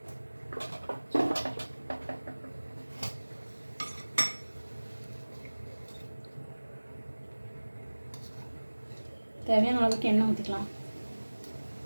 தேவையான அளவுக்கு எண்ணெய் ஊற்றிக்கலாம்.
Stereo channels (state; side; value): inverted; both; correlation -1.00